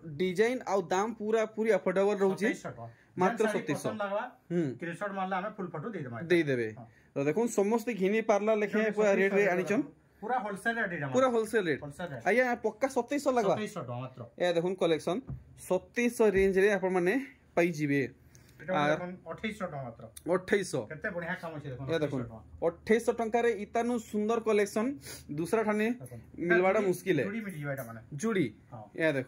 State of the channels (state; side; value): identical; both; correlation 1.00